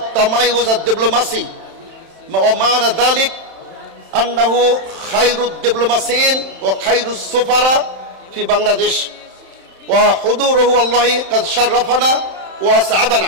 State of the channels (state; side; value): late; left; 31 ms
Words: الدبلوماسي ومعنى ذلك أنه خير الدبلوماسيين وخير السفراء في بنغلاديش وحضوره والله قد شرفنا